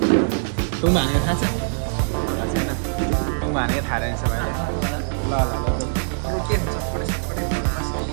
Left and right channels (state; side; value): silent; left; digital silence